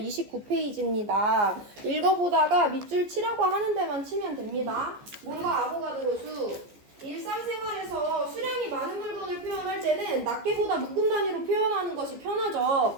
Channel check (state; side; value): late; left; 14 ms